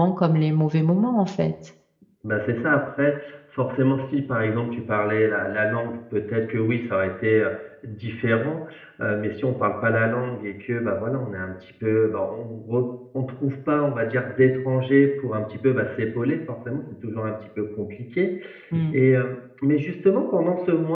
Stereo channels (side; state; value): both; identical; correlation 1.00